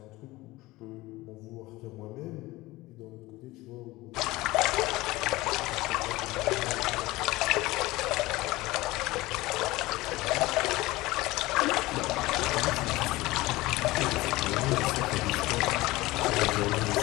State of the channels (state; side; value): quieter; right; 19.6 dB